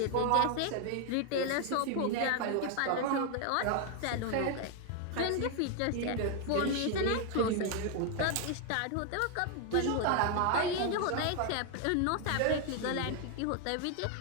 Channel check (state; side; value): different; both; correlation 0.00